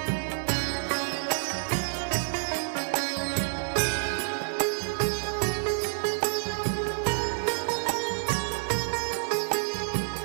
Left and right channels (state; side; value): silent; left; digital silence